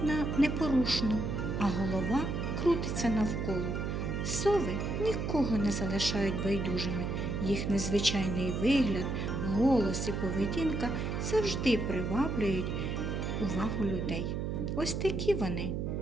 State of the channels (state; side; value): noise; right; hum, 2 dB below the sound